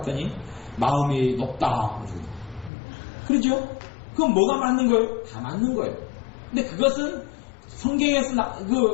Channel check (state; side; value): drops out; right; at 2.7 s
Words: 마음이 높다 그러죠? 그건 뭐가 맞는 거예요? 다 맞는 거예요. 근데 그것은 성경에서